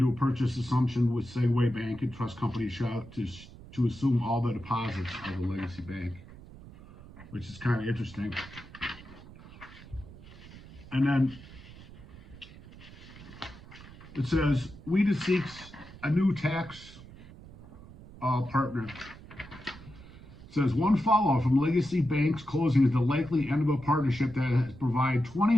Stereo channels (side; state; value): right; noise; rumble, 18 dB below the sound